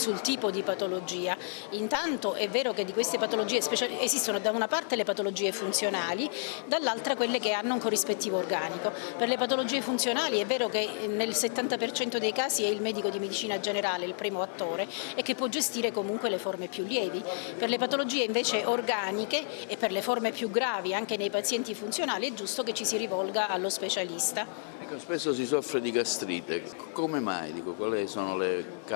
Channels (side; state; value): right; silent; digital silence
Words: tipo di patologia. Intanto è vero che di queste patologie esistono da una parte le patologie funzionali, dall'altra quelle che hanno un corrispettivo organico. Per le patologie funzionali è vero che nel 70% dei casi è il medico di medicina generale il primo attore e che può gestire comunque le forme più lievi. Per le patologie invece organiche e per le forme più gravi anche nei pazienti funzionali è giusto che ci si rivolga allo specialista. Ecco, spesso si soffre di gastrite, come mai? Quali sono le